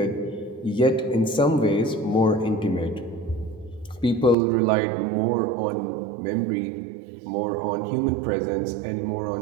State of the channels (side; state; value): left; drops out; at 4.4 s